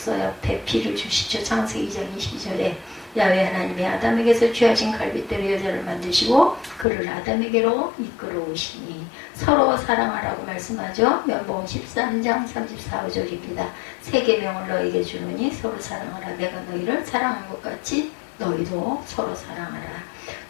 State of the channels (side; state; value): right; drops out; at 6.9 s